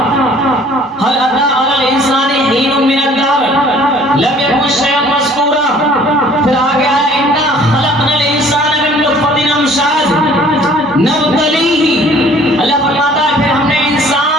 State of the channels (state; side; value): normal; both; correlation 0.54